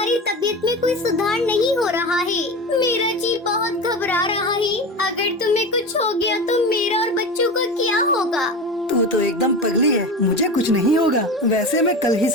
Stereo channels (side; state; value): both; normal; correlation 0.27